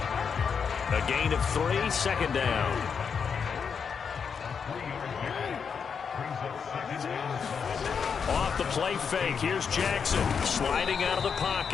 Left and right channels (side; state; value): right; quieter; 6.4 dB